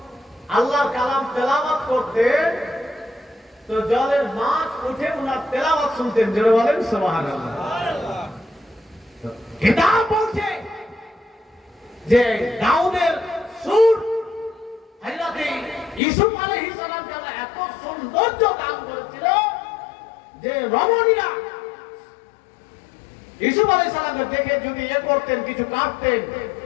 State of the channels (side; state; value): right; drops out; at 16.0 s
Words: আল্লাহর কালাম তেলাওয়াত করতেন তো জলের মাছ উঠে উনার তেলাওয়াত শুনতেন। জোরে বলেন সুবহানাল্লাহ। কিতাব বলছে যে দাউদের সুর হযরত ইউসুফ আলাইহিস সালামকে আল্লাহ এত সৌন্দর্য দান করেছিল যে রমণীরা ইউসুফ আলাইহিস সালামকে দেখে যদি করতেন, কিছু কাটতেন,